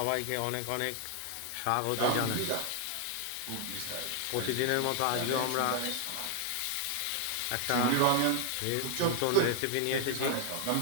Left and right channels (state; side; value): different; both; correlation 0.00